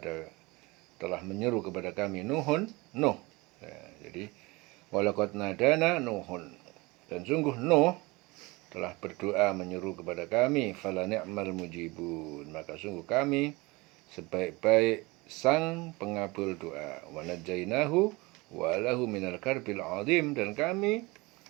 kami Nuh. Ya, jadi walaqad nadana Nuhun, dan sungguh Nuh telah berdoa menyeru kepada kami. Fala ni'mal mujibun, maka sungguh kami sebaik-baik sang pengabul doa. Wa najainahu wa lahu minal karbil azim, dan kami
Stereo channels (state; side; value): quieter; left; 23.9 dB